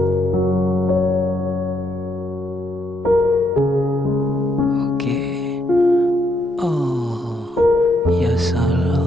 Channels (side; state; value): both; normal; correlation 0.75